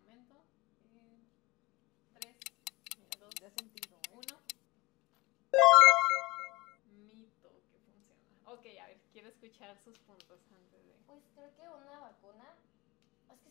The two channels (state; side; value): quieter; right; 22.9 dB